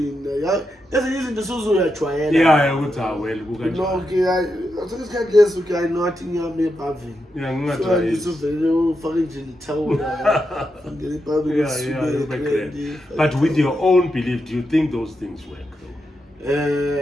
Yeah, ezinye izinto suzuyajwayela. Yeah, ukuthi well kukanjani. No, okay, isikhathi leso okay I know athi ngiyame pavin. Yeah, ngingajwayela. So ngizovele ufake nje ithawula. Ngene pavin. Yeah, but with your own belief, do you think those things work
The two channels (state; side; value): normal; both; correlation 0.86